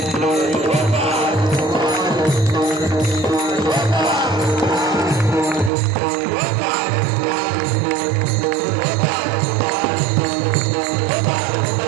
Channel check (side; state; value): left; drops out; at 5.7 s